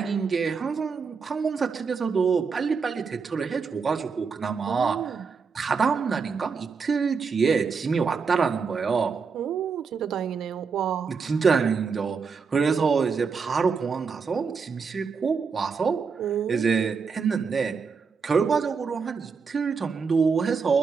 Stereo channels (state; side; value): quieter; left; 5.4 dB